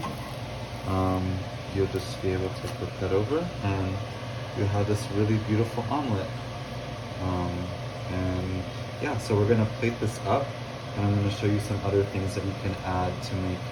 you'll just be able to flip that over and you have this really beautiful omelet. And yeah, so we're gonna plate this up and I'm gonna show you some other things that you can add to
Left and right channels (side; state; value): both; identical; correlation 1.00